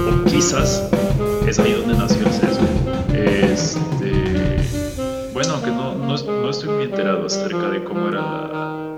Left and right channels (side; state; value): both; identical; correlation 1.00